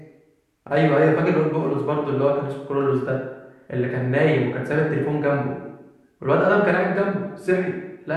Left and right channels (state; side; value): identical; both; correlation 1.00